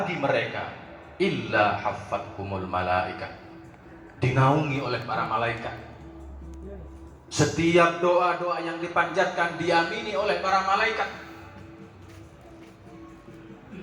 mereka illa haffathumul malaikah, dinaungi oleh para malaikat. Setiap doa-doa yang dipanjatkan diamini oleh para malaikat.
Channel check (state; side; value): identical; both; correlation 1.00